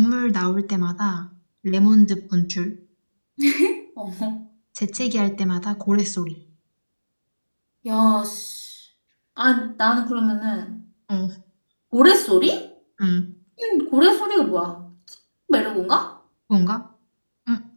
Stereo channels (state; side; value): inverted; both; correlation -1.00